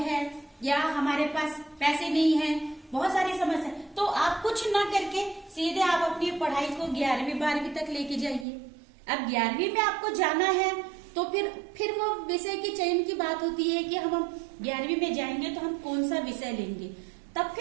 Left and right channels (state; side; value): drops out; left; at 8.5 s